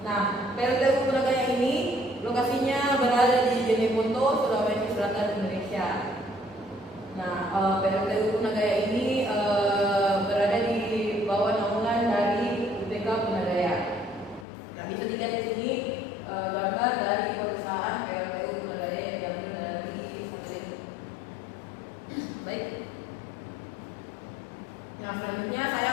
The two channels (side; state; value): right; drops out; at 14.5 s